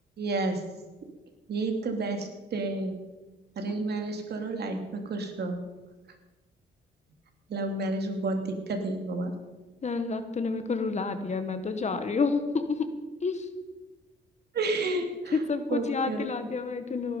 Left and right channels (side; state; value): both; normal; correlation 0.52